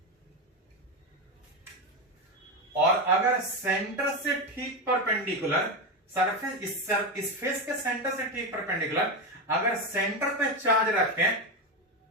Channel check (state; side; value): normal; both; correlation 0.14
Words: और अगर सेंटर से ठीक परपेंडिकुलर सरफेस, इस फेस के सेंटर से ठीक परपेंडिकुलर अगर सेंटर पे चार्ज रखें,